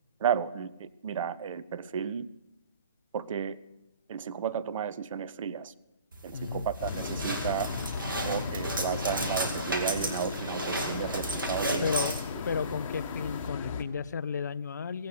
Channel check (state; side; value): inverted; both; correlation -0.45